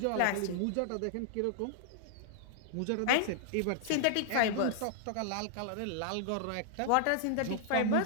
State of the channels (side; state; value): both; different; correlation -0.01